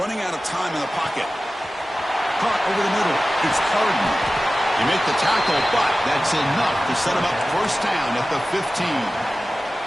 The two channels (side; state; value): both; normal; correlation 0.95